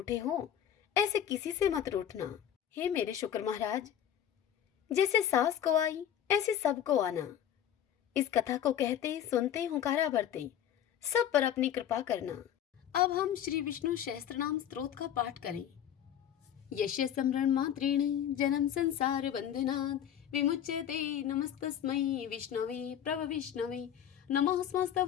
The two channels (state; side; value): quieter; right; 10.0 dB